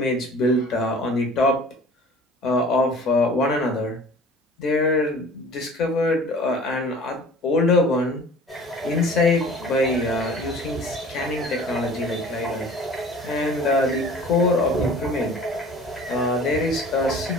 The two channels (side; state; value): both; normal; correlation 0.46